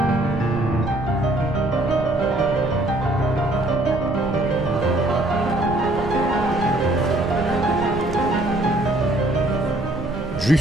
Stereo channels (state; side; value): noise; right; rumble, 9 dB below the sound